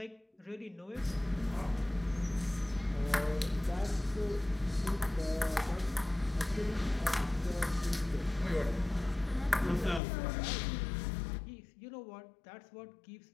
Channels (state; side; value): drops out; right; at 10.0 s